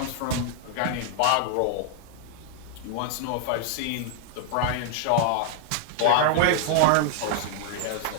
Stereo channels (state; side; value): different; both; correlation 0.00